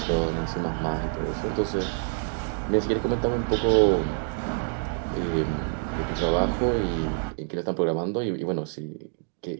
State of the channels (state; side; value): silent; left; 60 dB below the other